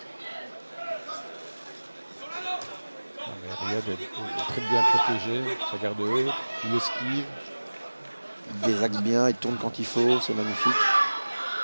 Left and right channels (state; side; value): inverted; both; correlation -1.00